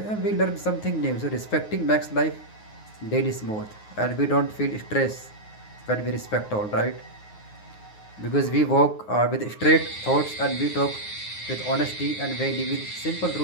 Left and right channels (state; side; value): late; right; 9.5 ms